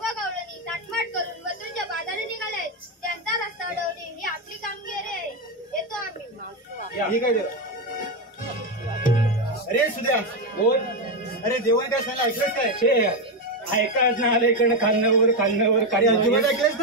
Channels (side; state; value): both; normal; correlation 0.08